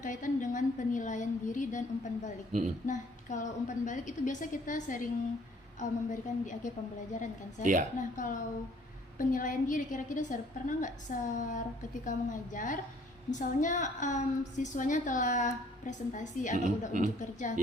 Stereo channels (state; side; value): normal; both; correlation 0.59